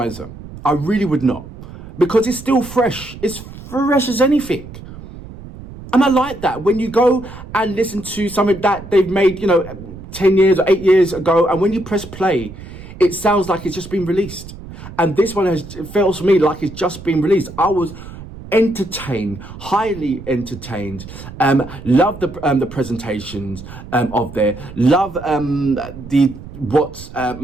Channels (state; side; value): noise; right; rumble, 15 dB below the sound